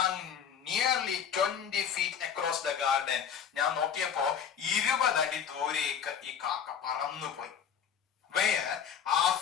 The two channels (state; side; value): quieter; right; 8.0 dB